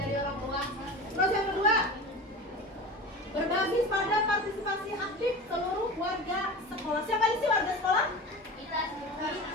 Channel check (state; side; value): normal; both; correlation 0.32